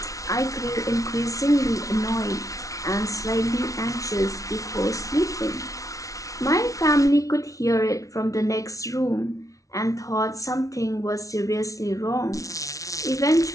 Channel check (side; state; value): right; late; 0.17 ms